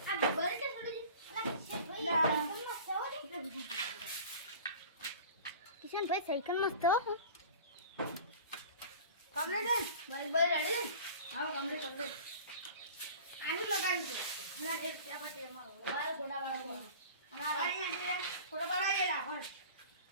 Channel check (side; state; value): both; inverted; correlation -0.40